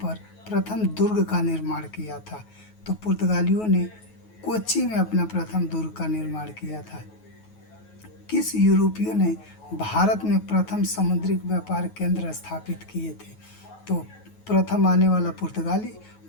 प्रथम दुर्ग का निर्माण किया था? तो पुर्तगालियों ने कोच्चि में अपना प्रथम दुर्ग का निर्माण किया था। किस यूरोपीय ने भारत में प्रथम समुद्री व्यापार केंद्र स्थापित किए थे? तो प्रथम आने वाला पुर्तगाली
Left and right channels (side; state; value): right; late; 9.3 ms